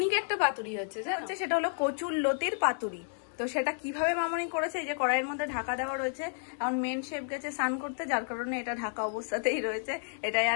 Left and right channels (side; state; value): right; silent; digital silence